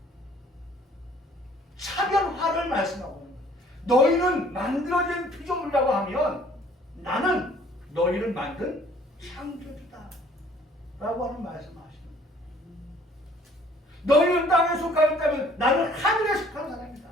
차별화를 말씀하고 있는 거예요. 너희는 만들어진 피조물이라고 하면 나는 너희를 만든 창조주다 라고 하는 말씀을 하시는 거예요. 너희는 땅에 속하여 있다면 나는 하늘에 속한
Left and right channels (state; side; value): normal; both; correlation 0.57